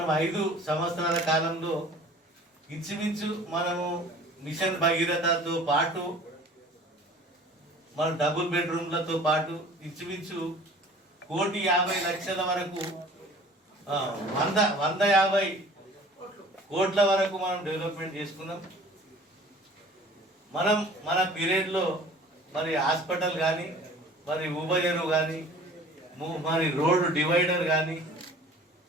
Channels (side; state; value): both; normal; correlation 0.47